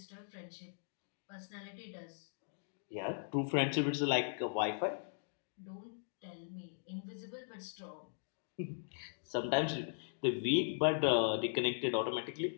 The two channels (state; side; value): silent; right; digital silence